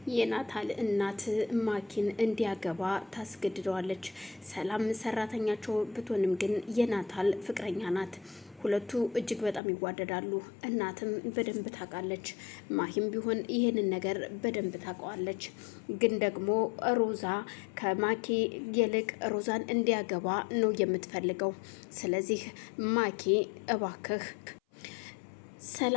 የናታል እናት ማኪን እንዲያገባ ታስገድደዋለች። ሰላም ሰራተኛቸው ብትሆንም ግን የናታል ፍቅረኛ ናት። ሁለቱ እጅግ በጣም ይዋደዳሉ። እናትም በደንብ ታውቃለች። ማሂም ቢሆን ይህንን ነገር በደንብ ታውቀዋለች። ግን ደግሞ ሮዛ ከማኪ ይልቅ ሮዛን እንዲያገባ ነው የምትፈልገው። ስለዚህ ማኪ እባክህ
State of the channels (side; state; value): right; drops out; at 9.6 s